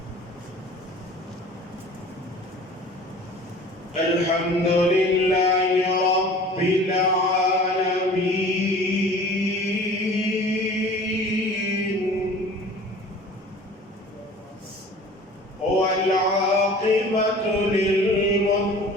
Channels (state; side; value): normal; both; correlation 0.44